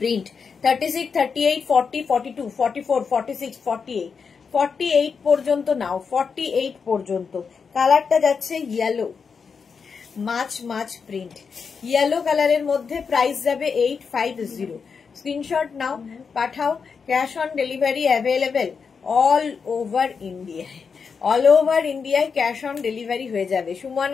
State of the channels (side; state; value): right; quieter; 5.7 dB